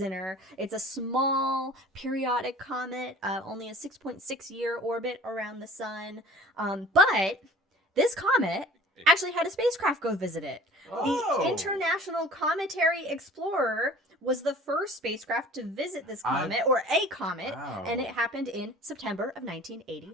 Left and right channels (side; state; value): both; normal; correlation 0.45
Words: It's a small periodic comet, only a 6.6 year orbit around the sun. But this comet actually had a spacecraft go visit it. The International Cometary Explorer was the first spacecraft to visit this comet, or a comet, and it happened in September of